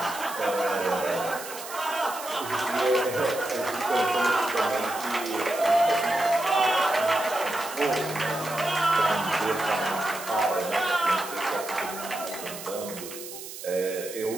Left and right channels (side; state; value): right; noise; hiss, 11 dB below the sound